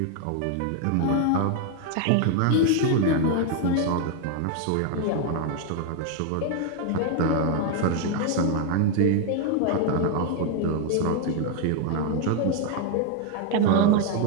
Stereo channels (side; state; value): both; different; correlation 0.01